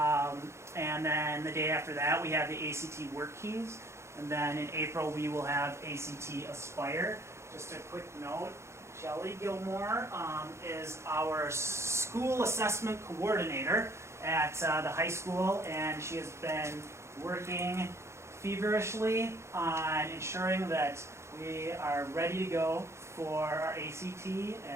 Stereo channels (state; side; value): late; left; 0.13 ms